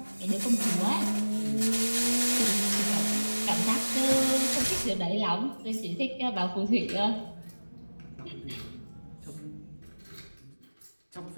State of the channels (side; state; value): both; inverted; correlation -1.00